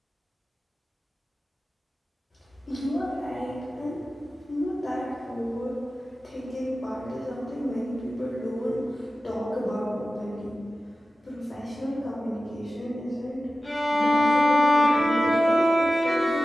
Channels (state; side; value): normal; both; correlation 0.95